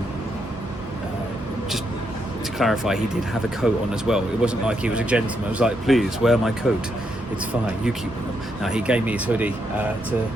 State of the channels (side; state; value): both; normal; correlation 0.79